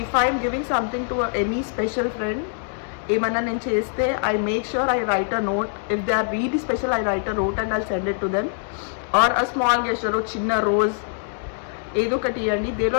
If I am giving something to any special friend, ఏమన్నా నేను చేస్తే I make sure I write a note. If they are really special, I write a note and I'll send it to them. Or a small gesture, చిన్న rose ఏదో ఒకటి ఇవ్వండి. They will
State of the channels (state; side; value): silent; right; digital silence